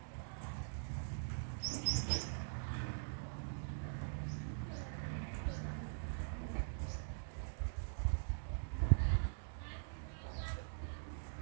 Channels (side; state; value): left; silent; digital silence